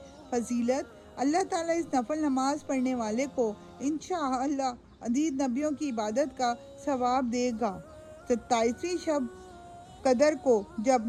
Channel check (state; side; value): identical; both; correlation 1.00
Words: فضیلت: اللہ تعالیٰ اس نفل نماز پڑھنے والے کو انشاءاللہ عدید نبیوں کی عبادت کا ثواب دے گا۔ 27ویں شب قدر کو جب